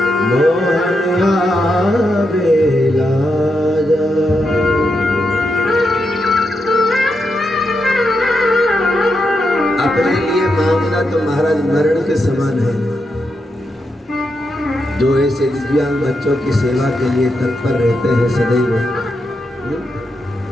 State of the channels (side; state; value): both; normal; correlation 0.84